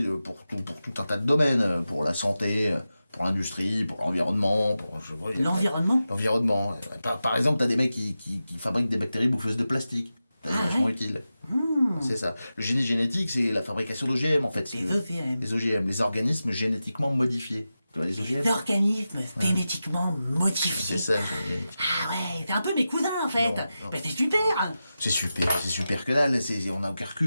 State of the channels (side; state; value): both; inverted; correlation -0.92